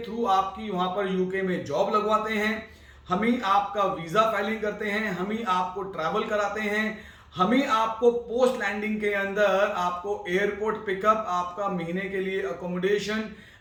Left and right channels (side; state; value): both; identical; correlation 1.00